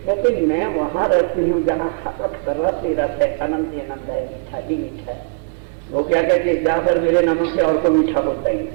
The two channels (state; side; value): quieter; left; 35.0 dB